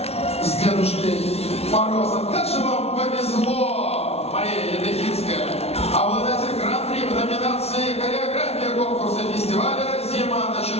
с Дедушкой Морозом. Как же вам повезло, Мария Ядрехинская, обладатель гран-при в номинации «Хореография» конкурса фестиваля «Зима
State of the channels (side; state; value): right; late; 0.30 ms